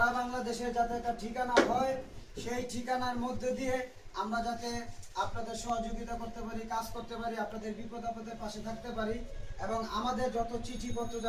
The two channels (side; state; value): both; identical; correlation 1.00